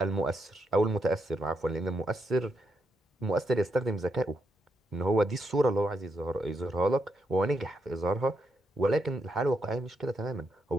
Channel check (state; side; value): normal; both; correlation 0.81